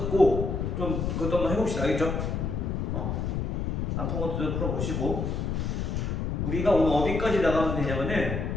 좀 그것도 한번 해봅시다. 알겠죠? 아픈 것도 좀 풀어보시고 우리가 오늘 어디까지 나가면 되냐면은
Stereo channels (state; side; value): noise; left; rumble, 1 dB below the sound